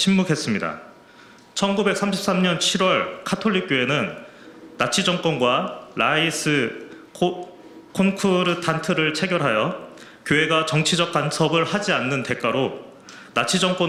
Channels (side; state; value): both; identical; correlation 1.00